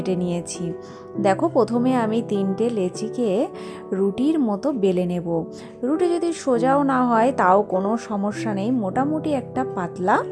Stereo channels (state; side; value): identical; both; correlation 1.00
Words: নিয়েছি। দেখো, প্রথমে আমি 3টে লেচিকে রুটির মতো বেলে নেব। রুটি যদি সোজাও না হয় তাও কোনো সমস্যা নেই, মোটামুটি একটা পাতলা